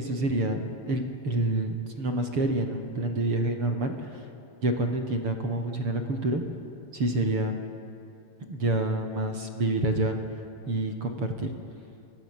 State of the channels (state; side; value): late; left; 6.9 ms